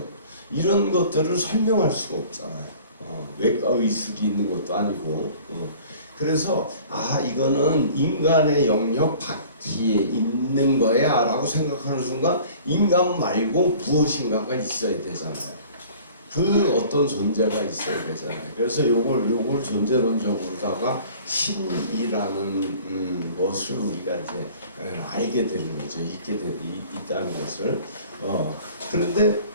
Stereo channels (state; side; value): inverted; both; correlation -0.48